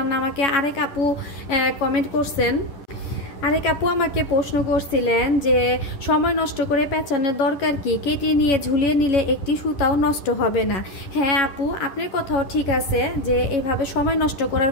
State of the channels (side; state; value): right; late; 10 ms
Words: না। আমাকে আরেক আপু কমেন্ট করছেন, আরেক আপু আমাকে প্রশ্ন করছিলেন যে সময় নষ্ট করে পেঁচানোর দরকার কি, কেটে নিয়ে ঝুলিয়ে নিলে একটি সুতাও নষ্ট হবে না। হ্যাঁ আপু, আপনার কথাও ঠিক আছে যে এইভাবে সময় নষ্ট করার